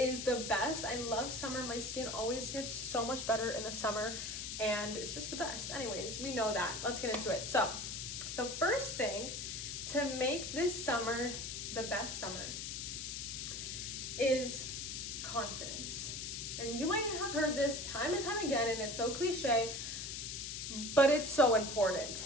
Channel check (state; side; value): noise; left; hiss, 5 dB below the sound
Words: the best. I love summer. My skin always gets so much better in the summer and it's just the best. Anyways, we know that. Let's get into it. So the first thing to make this summer the best summer is confidence. And you might have heard this time and time again, and it's so cliche, but it's so